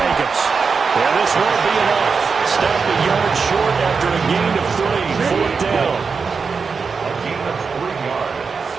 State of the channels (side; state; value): left; quieter; 5.2 dB